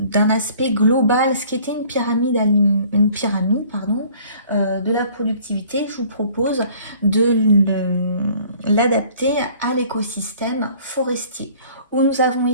aspect global ce qu'était une pyramide, de la productivité, je vous propose de l'adapter à l'écosystème forestier, où nous avons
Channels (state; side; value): inverted; both; correlation -0.54